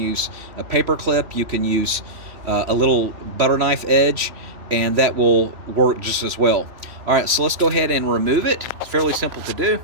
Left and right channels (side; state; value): left; late; 3.1 ms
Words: a paper clip. You can use a little butter knife edge, and that will work just as well. All right, so let's go ahead and remove it. It's fairly simple to do.